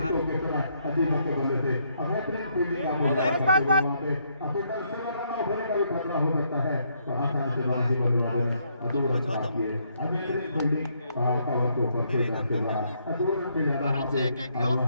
बल्ले से बेहतरीन फील्डिंग का खतरा हो सकता है, तो आसानी से बाजी बल्लेबाजी फील्डिंग कवर के ऊपर से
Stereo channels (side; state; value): both; inverted; correlation -0.73